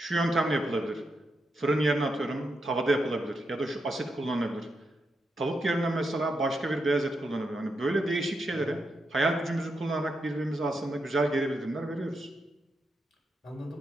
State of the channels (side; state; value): both; normal; correlation 0.84